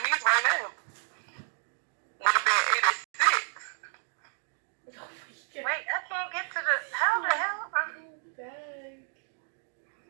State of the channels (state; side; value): silent; left; 57 dB below the other